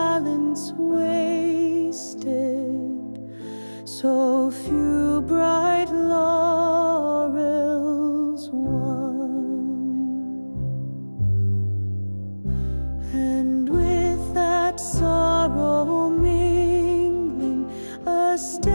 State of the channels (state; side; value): inverted; both; correlation -1.00